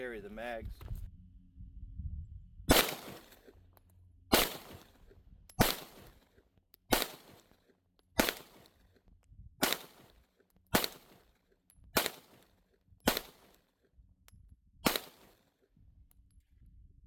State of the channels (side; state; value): both; identical; correlation 1.00